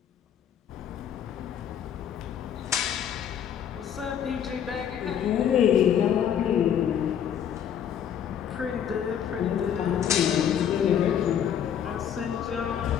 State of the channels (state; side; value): quieter; right; 9.0 dB